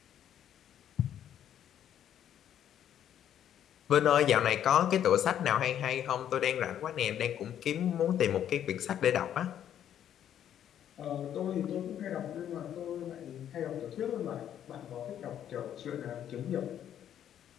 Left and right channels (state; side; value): quieter; right; 10.2 dB